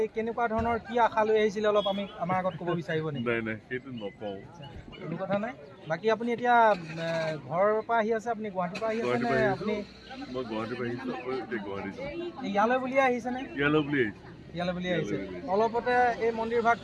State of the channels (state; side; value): identical; both; correlation 1.00